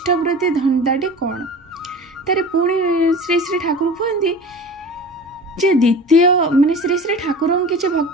धंदाटे कौन तारे पुणी श्री श्री ठाकुर कहते जे द्वितीय माने श्री श्री ठाकुर किसी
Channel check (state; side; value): normal; both; correlation 0.37